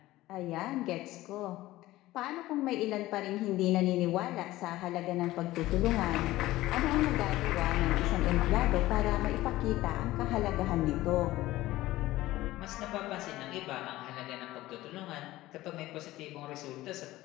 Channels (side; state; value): right; quieter; 16.8 dB